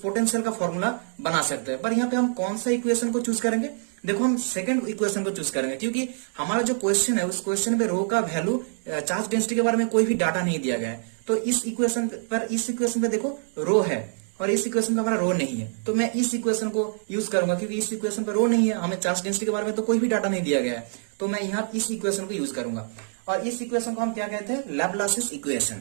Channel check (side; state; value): left; silent; digital silence